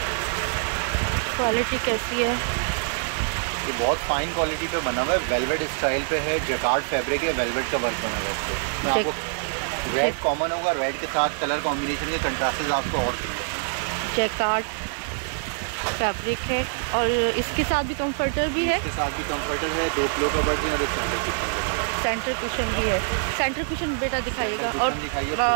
क्वालिटी कैसी है। ये बहुत फाइन क्वालिटी पे बना हुआ है, वेलवेट स्टाइल पे है, जैकार्ड फैब्रिक है, वेलवेट का वर्क होगा। आपको रेड कॉमन होगा, रेड के साथ कलर कॉम्बिनेशन के कंट्रास्टेस आपको और जैकार्ड फैब्रिक है और इसके साथ भी कंफर्टर भी है। इसके साथ भी कंफर्टर है, 2 पिलो कवर हैं और एक सेंटर कुशन भी है। सेंटर कुशन बेटा दिखाइएगा और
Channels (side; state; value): left; silent; digital silence